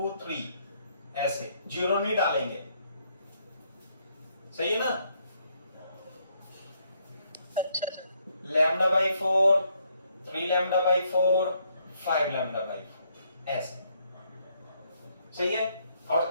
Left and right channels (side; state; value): both; inverted; correlation -0.72